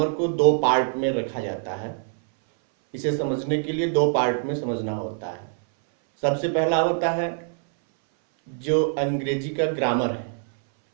को दो पार्ट में रखा जाता है। इसे समझने के लिए दो पार्ट में समझना होता है। सबसे पहला होता है जो अंग्रेजी का ग्रामर है।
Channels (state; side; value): silent; left; 59 dB below the other